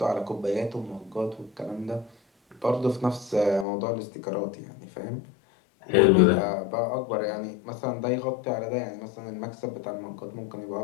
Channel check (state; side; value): drops out; right; at 3.7 s